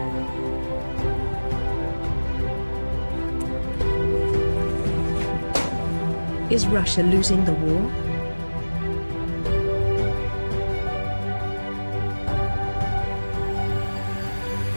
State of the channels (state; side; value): inverted; both; correlation -1.00